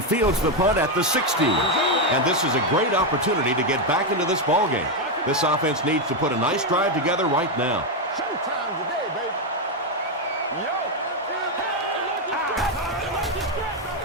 the punt at the 16. And this is a great opportunity to get back into this ballgame. This offense needs to put a nice drive together right now. Showtime today, baby.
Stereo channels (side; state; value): both; normal; correlation 0.05